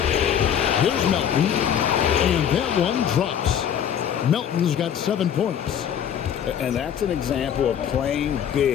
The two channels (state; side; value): quieter; right; 9.0 dB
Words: Here's Melton, and that one drops. Melton's got 7 points. And that's an example of playing